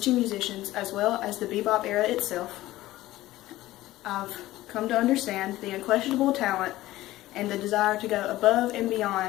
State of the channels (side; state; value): right; quieter; 16.3 dB